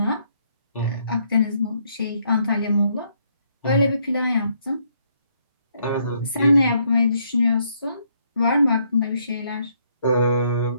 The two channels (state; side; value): inverted; both; correlation -0.72